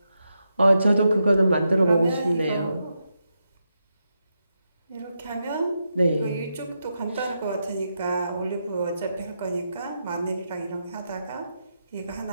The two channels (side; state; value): both; inverted; correlation -0.85